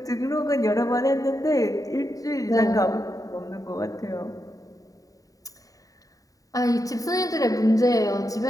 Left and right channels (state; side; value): late; right; 0.17 ms